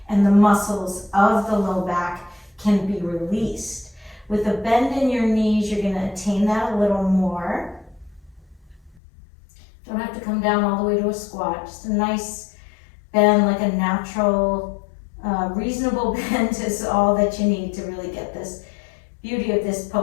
and the muscles of the low back can be released. With a bend in your knees, you're going to attain that a little more. Don't have to come down all the way to a squat. Just a nice bend, like a natural, reasonable bend is all that you need to really get this beauty of this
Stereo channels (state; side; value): drops out; right; at 9.0 s